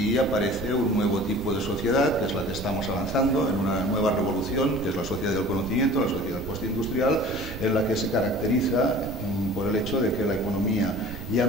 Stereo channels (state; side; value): noise; right; rumble, 11 dB below the sound